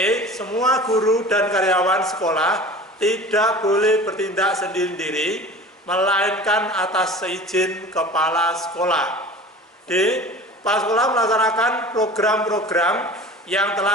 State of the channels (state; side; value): normal; both; correlation 0.39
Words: Semua guru dan karyawan sekolah tidak boleh bertindak sendiri-sendiri, melainkan atas seizin kepala sekolah. D. Kepala sekolah melaksanakan program-program yang